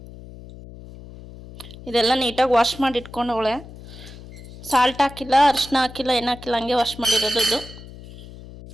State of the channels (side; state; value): left; noise; hum, 16 dB below the sound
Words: ಇದೆಲ್ಲ ನೀಟಾಗಿ ವಾಶ್ ಮಾಡಿ ಇಟ್ಕೊಂಡವಳೆ. ಸಾಲ್ಟ್ ಹಾಕಿಲ್ಲ, ಅರಿಶಿನ ಹಾಕಿಲ್ಲ, ಏನು ಹಾಕಿಲ್ಲ, ಹಂಗೆ ವಾಶ್ ಮಾಡಿರೋದು. ಇದು